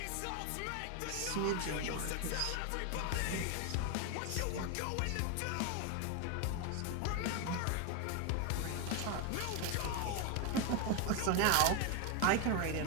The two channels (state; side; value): different; both; correlation 0.01